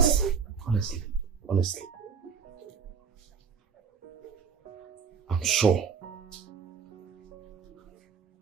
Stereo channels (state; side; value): quieter; left; 6.2 dB